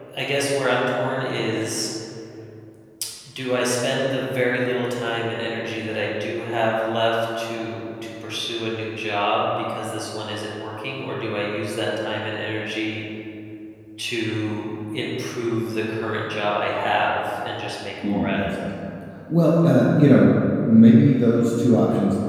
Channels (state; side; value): identical; both; correlation 1.00